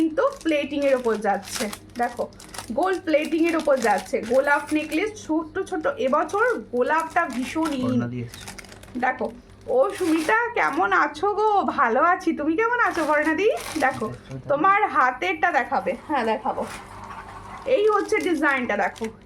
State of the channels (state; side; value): identical; both; correlation 1.00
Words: প্লেটিং এর ওপর যাচ্ছে, দেখো গোল্ড প্লেটিং এর ওপর যাচ্ছে গোলাপ নেকলেস, ছোট ছোট। এবছর গোলাপটা ভীষণ ইন। দেখো ও সুমিতা কেমন আছো গো? ভালো আছি, তুমি কেমন আছো বর্ণাদি? দেখো তোমার হাতেরটা দেখাবে, হ্যাঁ দেখাবো। এই হচ্ছে ডিজাইনটা, দেখো